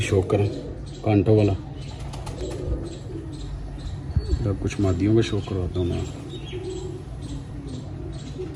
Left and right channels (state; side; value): identical; both; correlation 1.00